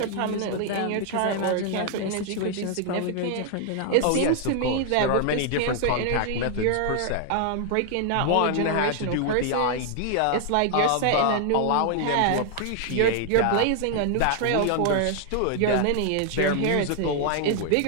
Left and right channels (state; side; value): different; both; correlation 0.00